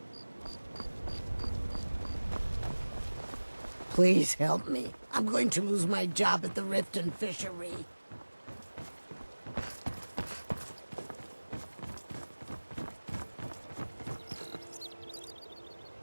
Please help me. I'm going to lose my job at the Riften Fishery.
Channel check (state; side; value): inverted; both; correlation -1.00